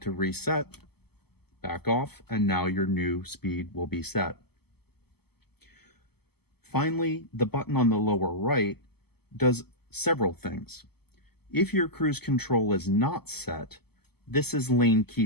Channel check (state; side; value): late; right; 0.96 ms